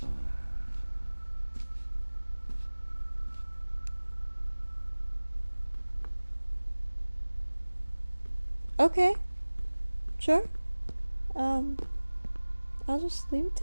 Okay. Sure. I'll just leave it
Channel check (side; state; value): both; inverted; correlation -1.00